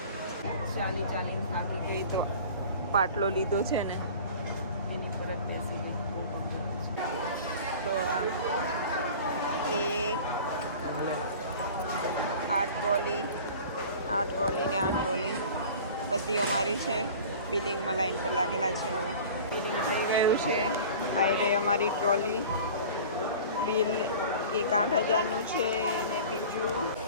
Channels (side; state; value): both; inverted; correlation -0.41